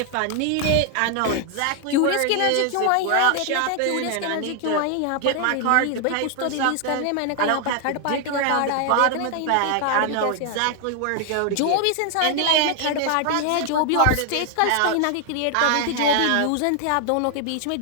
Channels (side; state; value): both; different; correlation 0.00